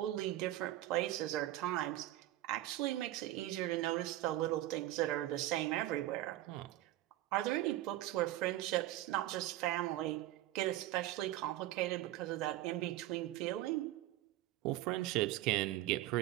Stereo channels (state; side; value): quieter; left; 15.3 dB